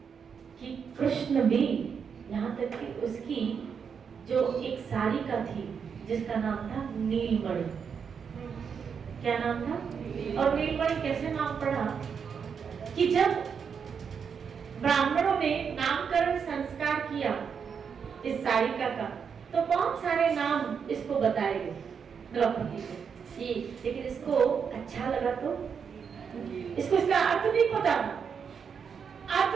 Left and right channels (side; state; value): left; quieter; 6.6 dB